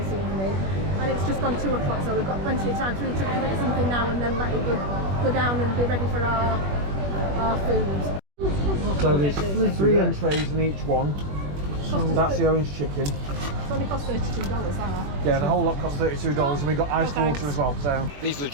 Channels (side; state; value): left; late; 21 ms